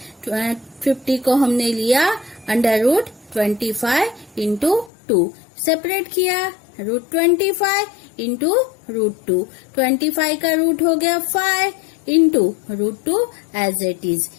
50 को हमने लिया अंडर रूट 25 इंटू 2, सेपरेट किया रूट 25 इंटू रूट 2। 25 का रूट हो गया 5 into root 2 as it is.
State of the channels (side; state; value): right; drops out; at 4.9 s